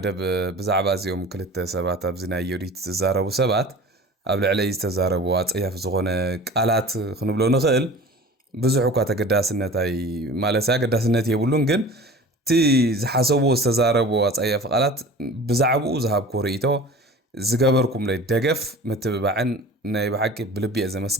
بزعباز يوم كلت سبات أبزنا يريد تزاربو سبات قبل عليه تزاربو أياف زغونة قالات خنبلو نخيل بزحو كاتا قداسنتاي مالسا قداسنت يبولون جن تي زحاسوبو استزاربو أصيف قالات بزعبو زهاب كوريتو زقابركم لي دقف متبعن ناي بحكي بلبي أزا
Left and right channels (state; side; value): normal; both; correlation 0.40